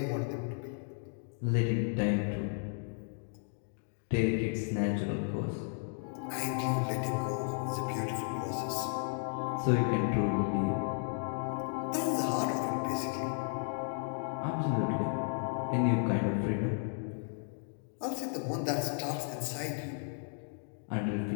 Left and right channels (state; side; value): silent; right; 55 dB below the other